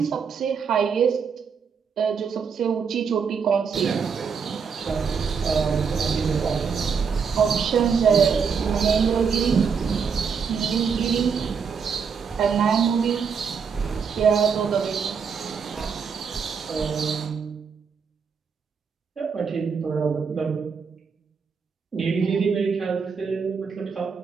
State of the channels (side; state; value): left; quieter; 6.1 dB